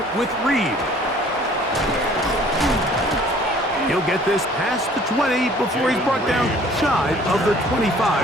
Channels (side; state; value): both; normal; correlation 0.54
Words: with Reed. He'll get this past the 20 before he's brought down shy of the